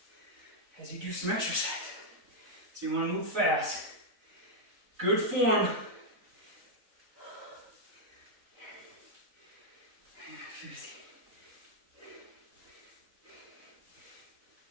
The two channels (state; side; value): late; left; 3.9 ms